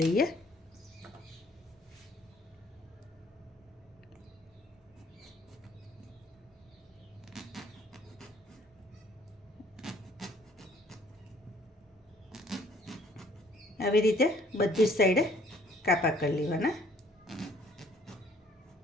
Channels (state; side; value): normal; both; correlation 0.59